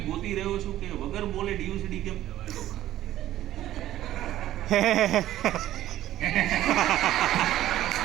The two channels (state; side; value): quieter; left; 13.5 dB